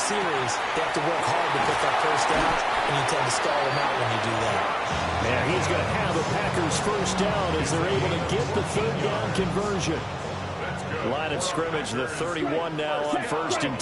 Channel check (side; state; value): both; identical; correlation 1.00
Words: they have to work hard to put that first down, and you tend to stall them out when you do that. And he's going to have a Packers first down as they're able to get the third down conversion. Line of scrimmage, the 31 now on 1st and